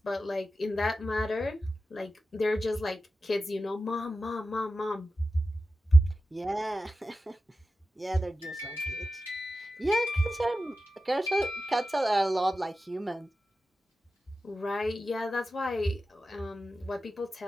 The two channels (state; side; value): normal; both; correlation 0.93